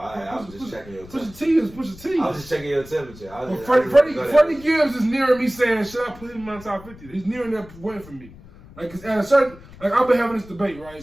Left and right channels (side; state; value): left; noise; rumble, 20 dB below the sound